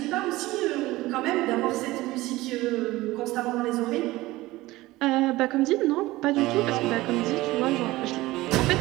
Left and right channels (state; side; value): quieter; left; 18.7 dB